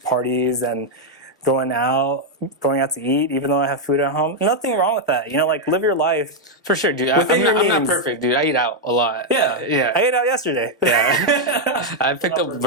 parties and going out to eat, even though I have food at home. Nothing wrong with that. Like live your life. For sure, dude. Within your I'm not means. perfect, dude. I eat out a lot. Yeah. Yeah. I ate out yesterday. Yeah. I picked up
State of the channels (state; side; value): normal; both; correlation 0.00